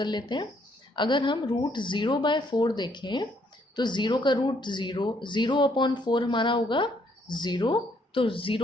लेते हैं। अगर हम रूट 0/4 देखें तो 0 का रूट 0, 0/4 हमारा होगा 0, तो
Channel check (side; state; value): both; normal; correlation 0.69